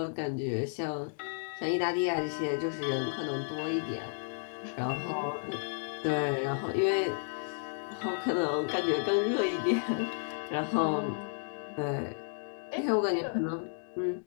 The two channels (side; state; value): right; silent; digital silence